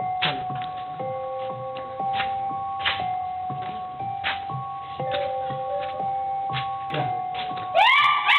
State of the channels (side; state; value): both; identical; correlation 1.00